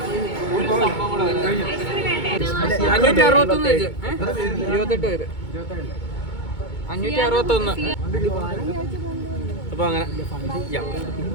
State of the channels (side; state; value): right; late; 2.2 ms